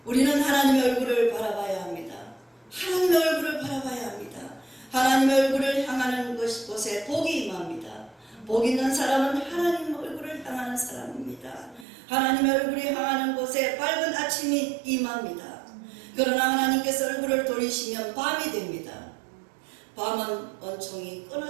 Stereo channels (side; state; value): left; drops out; at 11.9 s